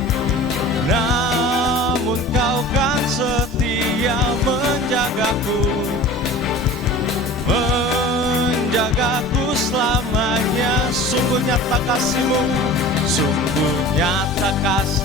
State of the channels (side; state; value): both; normal; correlation 0.39